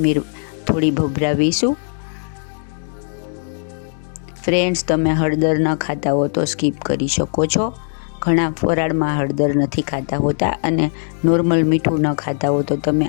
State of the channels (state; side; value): silent; right; digital silence